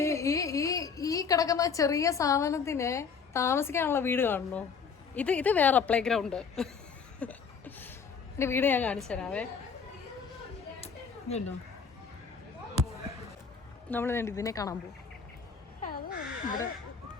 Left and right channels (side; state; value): right; quieter; 6.0 dB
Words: ഈ കിടക്കുന്ന ചെറിയ സാധനത്തിന് താമസിക്കാനുള്ള വീട് കാണണോ? ഇത് വേറെ പ്ലേ ഗ്രൗണ്ട്. എന്റെ വീട് ഞാൻ കാണിച്ചു തരാവേ. ഇതുണ്ടോ, നമ്മൾ ഇതിനെ കാണാൻ പോകും.